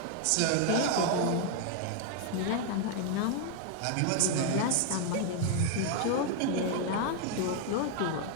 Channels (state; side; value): different; both; correlation 0.00